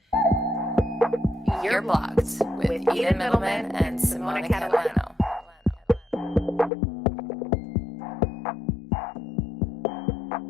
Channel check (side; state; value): right; drops out; at 6.7 s